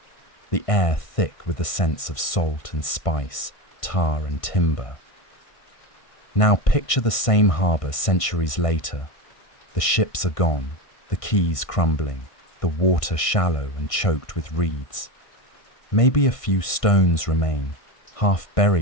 the air thick with the scents of salt and spice, tar and timber. Now picture the same harbour centuries later. The ships are gone, the quays crumbling, the water shallow and choked with reeds. Maybe a few stones remain, half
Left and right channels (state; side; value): late; right; 1.6 ms